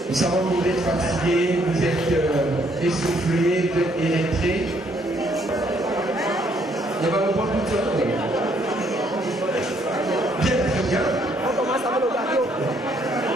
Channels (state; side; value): normal; both; correlation 0.68